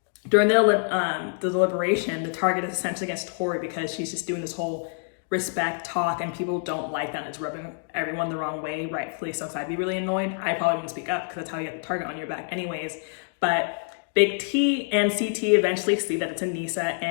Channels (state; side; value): silent; right; 57 dB below the other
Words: During the deliberation, the target is essentially against Tori because she's just doing this whole respect talk and people don't like that. And it's rubbing everyone the wrong way, rightfully so. So I'd be really annoyed. I probably wouldn't speak up because that's how you get the target on your back anyways. But Big T and CT eventually see that it's Anissa